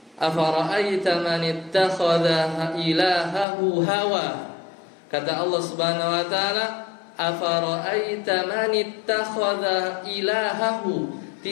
afara'aita man ittakhadha ilahahu hawa. Kata Allah Subhanahu wa taala, afara'aita man ittakhadha ilahahu,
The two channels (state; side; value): drops out; right; at 3.5 s